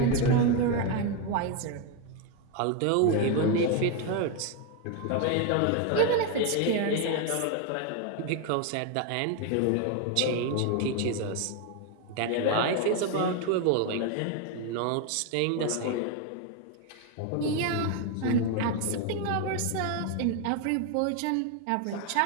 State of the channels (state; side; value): different; both; correlation 0.02